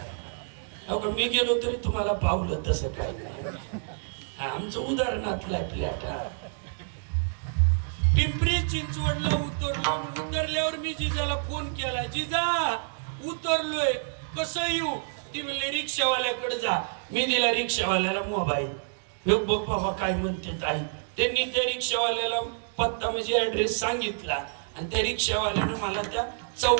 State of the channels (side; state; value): left; silent; digital silence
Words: मी गेलो तरी तुम्हाला पावलं तसं काही नाही. आमचं उदाहरणातला फ्लॅट. पिंपरी चिंचवडला उतरलो. उतरल्यावर मी जिजाला फोन केला, जिजा उतरलोय कसं येऊ? ती म्हणली रिक्षावाल्याकडे जा. मी दिला रिक्षावाल्याला मोबाईल. बघ बाबा काय म्हणते ताई. त्यांनी त्या रिक्षावाल्याला पत्ता म्हणजे ऍड्रेस सांगितला आणि त्या रिक्षावाल्यानं मला त्या